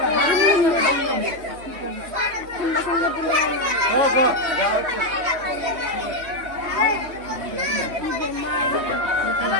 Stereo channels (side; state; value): left; late; 3.1 ms